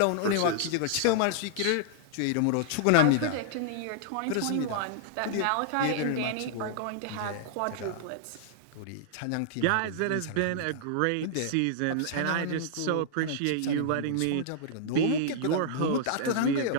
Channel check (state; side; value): different; both; correlation -0.01